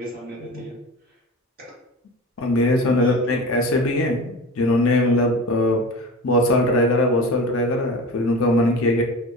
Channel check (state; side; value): normal; both; correlation 0.33